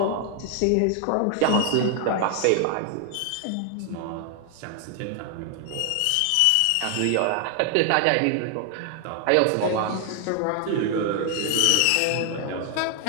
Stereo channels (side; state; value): both; different; correlation 0.00